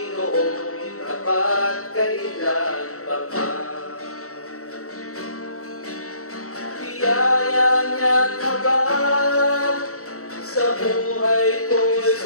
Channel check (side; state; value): right; late; 0.64 ms